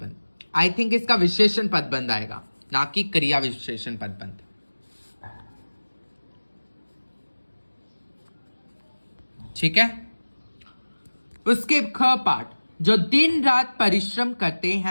आई थिंक इसका विशेषण पदबंध आएगा, ना कि क्रिया विशेषण पदबंध। ठीक है। उसके ख पाठ, जो दिन रात परिश्रम करते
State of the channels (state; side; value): inverted; both; correlation -1.00